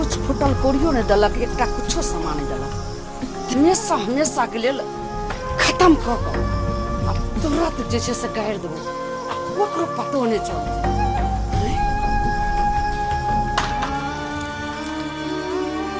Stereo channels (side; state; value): both; identical; correlation 1.00